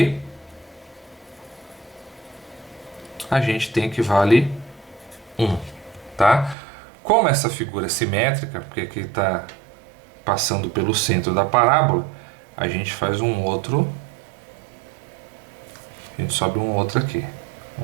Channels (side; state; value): left; drops out; at 6.6 s